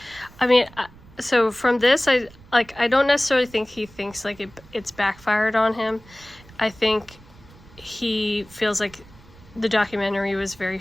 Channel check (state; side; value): noise; right; rumble, 23 dB below the sound